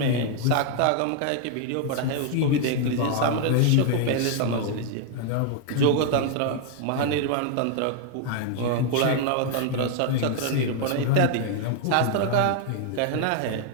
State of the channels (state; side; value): different; both; correlation 0.00